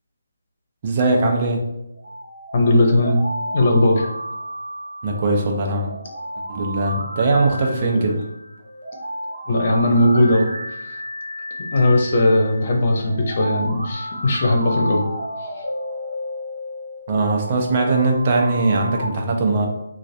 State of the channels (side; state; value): both; inverted; correlation -0.78